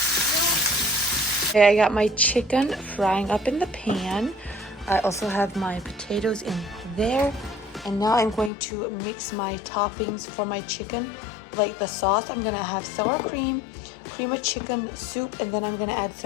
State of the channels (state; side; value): drops out; right; at 8.5 s